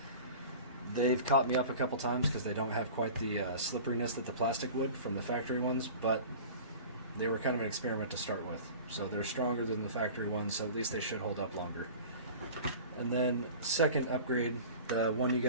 they've caught me up a couple times because they don't have quite the slipperiness that the plastic would from the factory ones, but they were kind of an experiment to start with. So they're stronger than the factory ones, so at least they should hold up longer. And then second upgrade, the one you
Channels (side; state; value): both; inverted; correlation -0.39